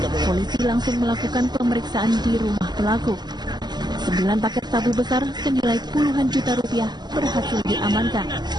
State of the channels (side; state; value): left; late; 0.21 ms